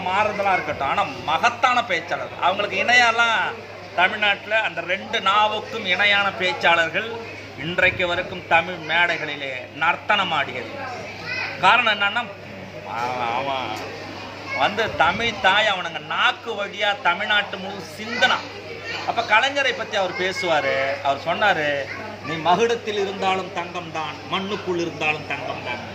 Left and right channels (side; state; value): both; identical; correlation 1.00